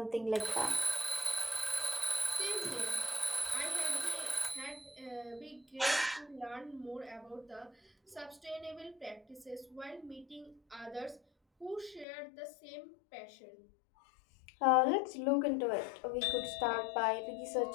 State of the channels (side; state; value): right; drops out; at 12.1 s